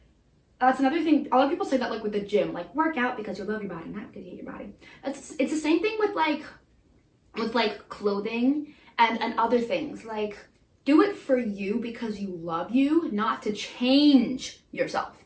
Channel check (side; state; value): both; identical; correlation 1.00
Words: That's another thing. A lot of people say that, like, with the gym, like, work out because you love your body, not because you hate your body. It's the same thing with clothing and other things. Like, do it for you because you love you, not to change yourself.